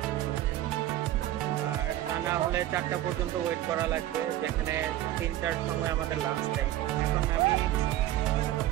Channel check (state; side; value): quieter; left; 14.1 dB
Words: আর তা না হলে 4টা পর্যন্ত ওয়েট করা লাগবে, যেখানে 3টার সময় আমাদের লাঞ্চ টাইম। এখন আমি